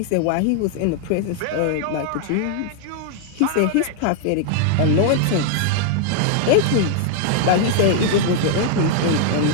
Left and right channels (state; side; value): different; both; correlation 0.00